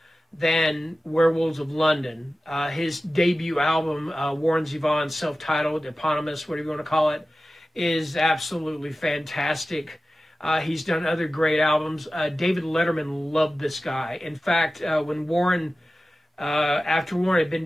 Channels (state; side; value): normal; both; correlation 0.95